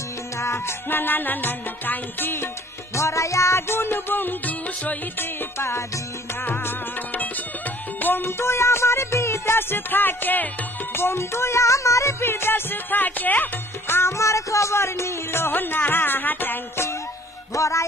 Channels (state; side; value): normal; both; correlation 0.55